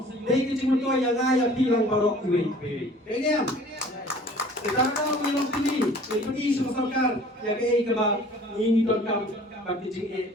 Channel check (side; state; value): both; normal; correlation 0.49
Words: Dai kecing to yangaya bilang barok kuwi. Deniam. Sekarang binong pilih, pergi sama sorkar ya ke kaba ini don kam bagi jing